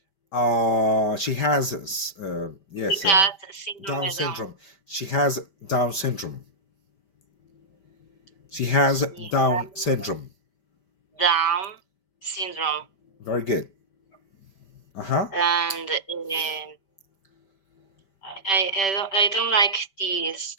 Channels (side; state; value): right; late; 5.1 ms